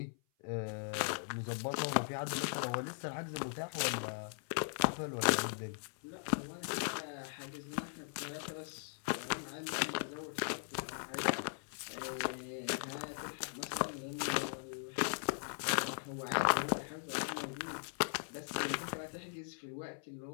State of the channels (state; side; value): silent; right; 52 dB below the other